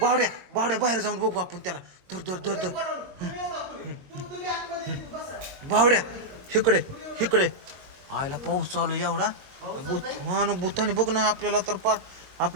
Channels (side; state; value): left; late; 21 ms